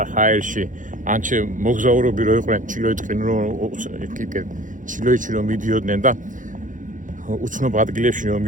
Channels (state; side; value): late; left; 0.38 ms